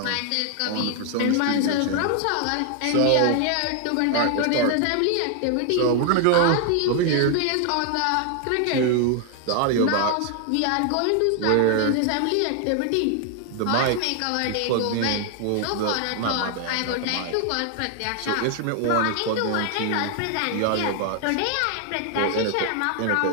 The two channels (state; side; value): different; both; correlation 0.00